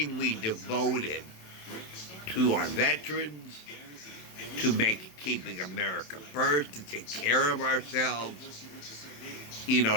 devoted to our veterans, to keeping America first, to take care of ourselves,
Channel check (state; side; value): late; right; 27 ms